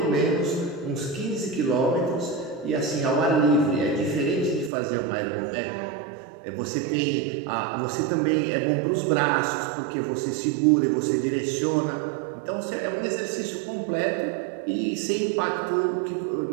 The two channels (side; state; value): left; drops out; at 4.7 s